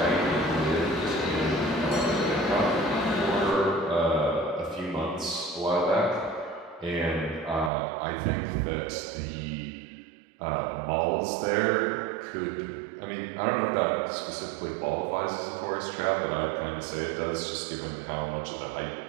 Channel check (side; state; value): left; drops out; at 7.7 s